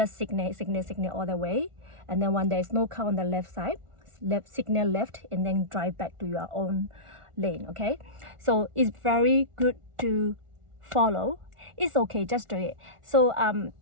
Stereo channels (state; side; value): late; left; 1.4 ms